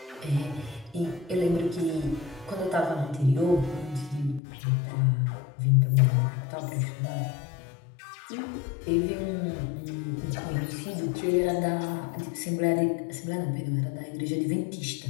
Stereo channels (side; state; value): right; drops out; at 4.4 s